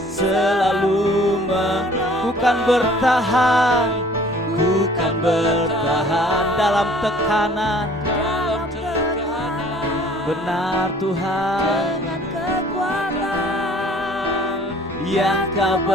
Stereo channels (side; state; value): both; normal; correlation 0.53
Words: selalu ku kan bertahan, ku kan bertahan dalam tekanan. Dalam tekanan, Benar Tuhan, dengan kekuatan yang Kau